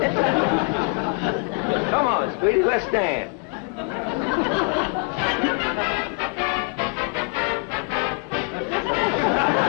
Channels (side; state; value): right; quieter; 33.6 dB